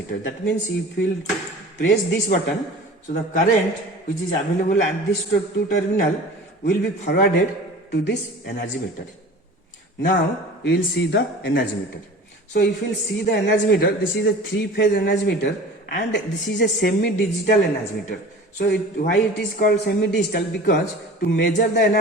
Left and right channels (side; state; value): both; normal; correlation 0.40